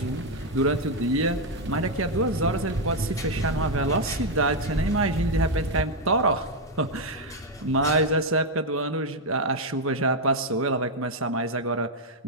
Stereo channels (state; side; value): normal; both; correlation 0.01